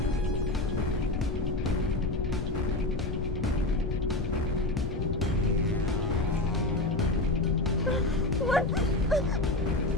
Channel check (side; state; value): left; noise; rumble, 2 dB below the sound